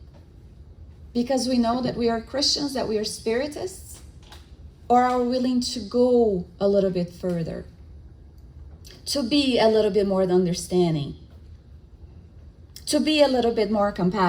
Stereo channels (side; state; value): both; identical; correlation 1.00